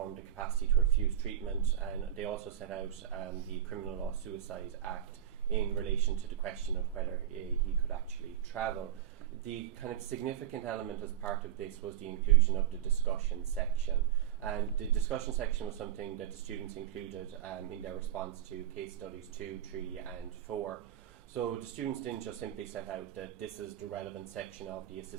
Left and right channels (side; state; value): left; quieter; 10.6 dB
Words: the capacity to refuse treatment, and they also set out the Criminal Law Suicide Act in relation to the question of whether he could actually travel. The kind of significant element as part of this was the inclusion of the discussion section. And the discussion section was something that the students included in their response to case studies 2, 3 and 4. So the students didn't just simply set out that this is the relevant section of the